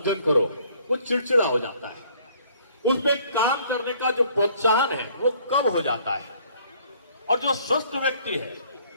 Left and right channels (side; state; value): both; inverted; correlation -0.60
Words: करो, वो चिड़चिड़ा हो जाता है। उसमें काम करने का जो प्रोत्साहन है वो कम हो जाता है। और जो स्वस्थ व्यक्ति है,